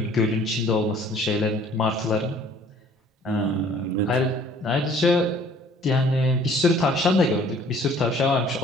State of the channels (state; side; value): normal; both; correlation 0.55